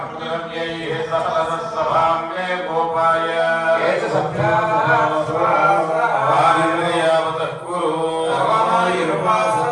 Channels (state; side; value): identical; both; correlation 1.00